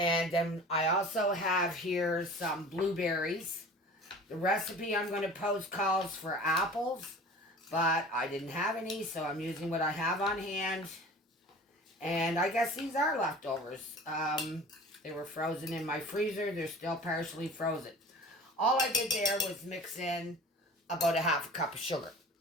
then I also have here some blueberries. The recipe I'm going to post calls for apples, but I didn't have any, so I'm using what I have on hand. And I guess these are leftovers. They were frozen in my freezer. They're still partially frozen. All I did there was mix in about a half a cup of sugar.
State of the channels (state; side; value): normal; both; correlation 0.41